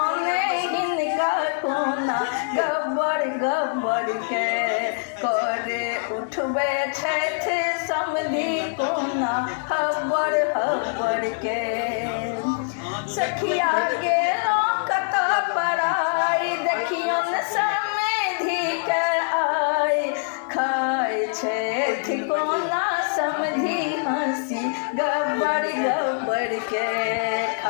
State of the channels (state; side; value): silent; right; digital silence